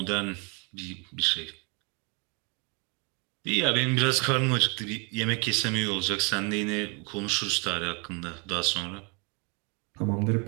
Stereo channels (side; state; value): left; quieter; 32.8 dB